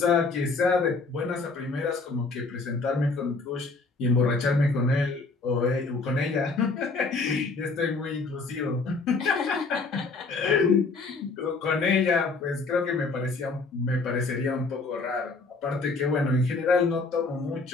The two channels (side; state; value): right; quieter; 3.9 dB